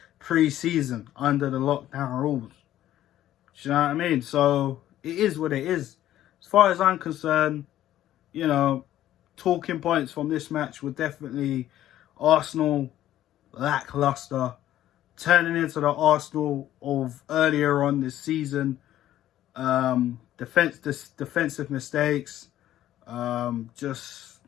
pre-season under the lockdown rules. Do you know what I mean? So it is what it is. As far as I'm concerned, talking points from this match were definitely Arsenal lackluster, turning into the Arsenal of earlier on this season. Defensive mistakes, just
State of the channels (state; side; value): quieter; right; 12.9 dB